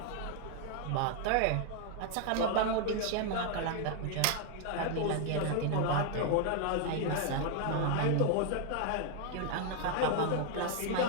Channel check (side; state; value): both; different; correlation 0.00